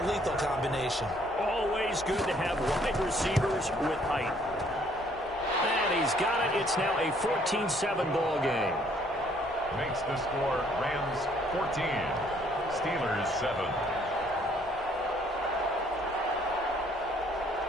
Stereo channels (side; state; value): both; normal; correlation 0.63